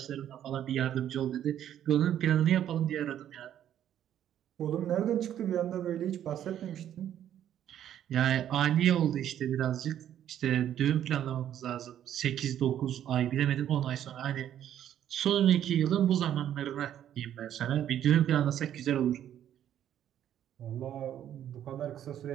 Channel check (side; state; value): left; quieter; 10.7 dB